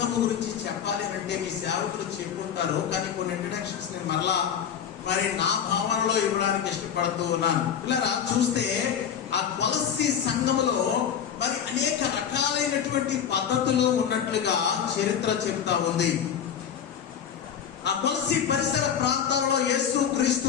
గురించి చెప్పాలి అంటే మీ సేవకులు చెప్పుకుంటారు, కానీ కొన్ని ఇంట్రడక్షన్స్ నేను మరలా మరి నా భావనలో ఇవ్వడానికి ఇష్టపడుతూ ఉన్నాను. పిల్లరా, చూస్తే ఆ కొలస్సీ సంఘములో మరి అనేక రకాలైనటువంటి పద్ధతులు ఉన్నట్లుగా చరిత్ర చెప్తా ఉంది. ఆ కొలస్సీ పరిసర ప్రాంతాలలో యేసు క్రీస్తు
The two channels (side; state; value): right; quieter; 8.4 dB